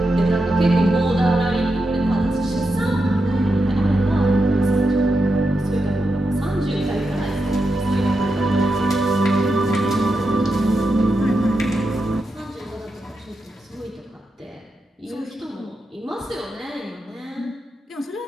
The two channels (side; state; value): both; normal; correlation 0.87